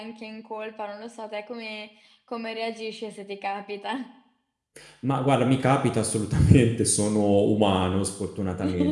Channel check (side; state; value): both; identical; correlation 1.00